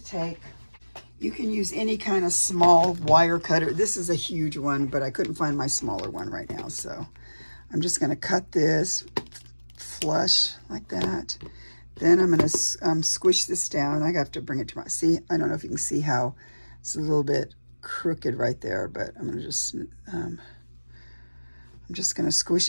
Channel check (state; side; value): inverted; both; correlation -1.00